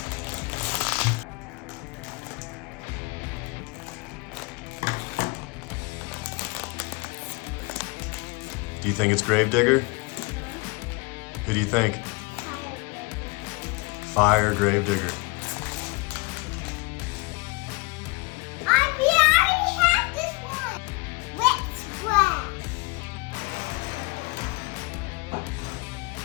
Do you think it's Gravedigger? Who do you think? Fire Gravedigger. We already have this one. Wet Splash.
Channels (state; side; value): quieter; right; 27.1 dB